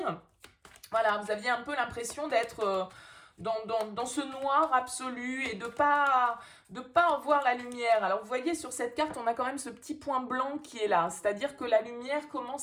Voilà, vous aviez un peu l'impression d'être dans ce noir absolu et de pas en voir la lumière. Alors vous voyez, sur cette carte, on a quand même ce petit point blanc qui est là, c'est-à-dire que la lumière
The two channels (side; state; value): both; identical; correlation 1.00